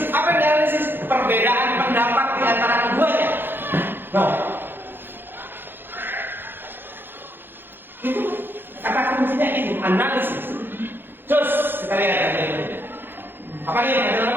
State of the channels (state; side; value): late; left; 0.10 ms